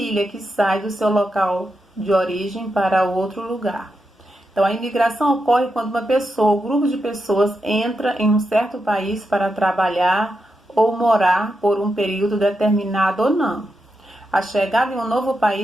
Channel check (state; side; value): normal; both; correlation 0.86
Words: que sai do seu local de origem para outro lugar. Então, a imigração ocorre quando uma pessoa, um grupo de pessoas entra em um certo país para trabalhar ou morar por um período determinado ou não. A chegada em um novo